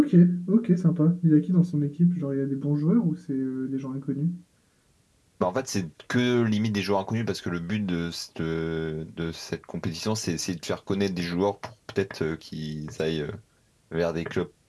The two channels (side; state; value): both; identical; correlation 1.00